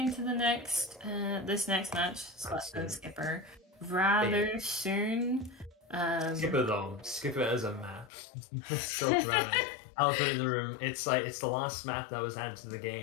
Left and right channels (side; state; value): right; drops out; at 8.1 s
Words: the next this next match, Splatoon Skipper, rather soon. Skipper as a map. So dramatic. I'll put it in the room. It's the last map that was added to the